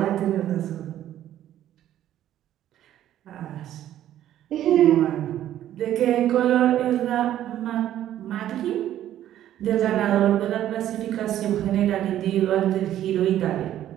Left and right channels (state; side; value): quieter; left; 12.1 dB